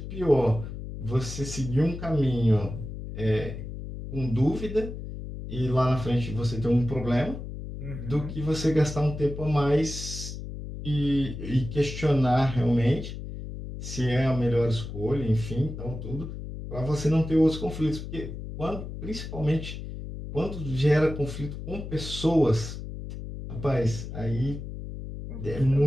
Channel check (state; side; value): noise; left; hum, 9 dB below the sound